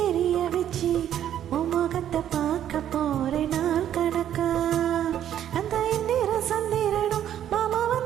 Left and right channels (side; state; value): left; quieter; 10.6 dB